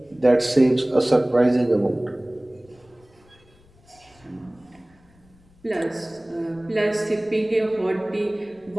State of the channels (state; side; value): noise; left; rumble, 30 dB below the sound